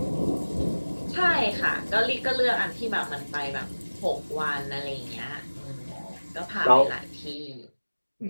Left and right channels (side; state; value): both; inverted; correlation -1.00